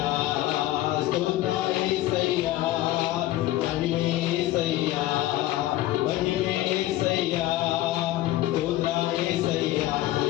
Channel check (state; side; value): quieter; right; 15.4 dB